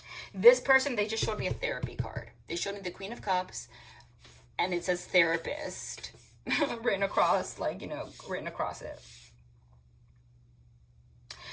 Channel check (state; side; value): identical; both; correlation 1.00